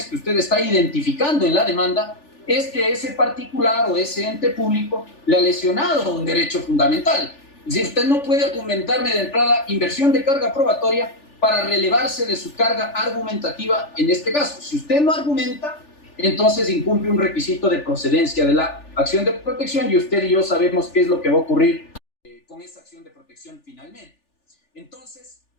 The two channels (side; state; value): right; late; 3.4 ms